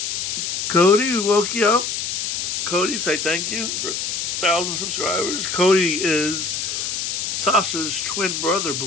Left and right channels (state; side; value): noise; left; hiss, 2 dB below the sound